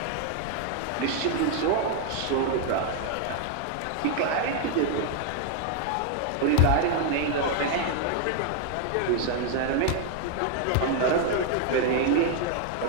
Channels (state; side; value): different; both; correlation 0.00